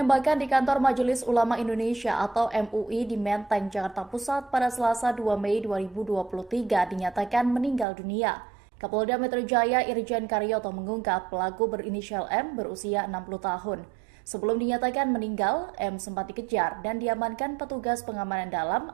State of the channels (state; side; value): drops out; left; at 7.9 s